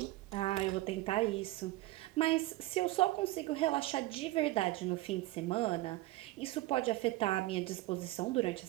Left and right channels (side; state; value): left; quieter; 18.3 dB